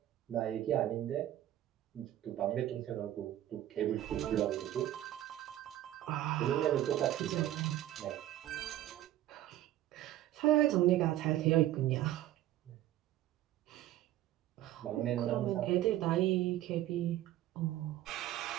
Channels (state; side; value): quieter; left; 13.6 dB